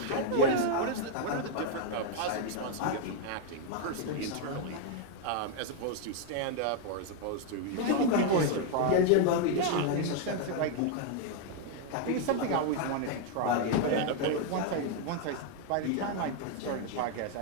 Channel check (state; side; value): different; both; correlation 0.00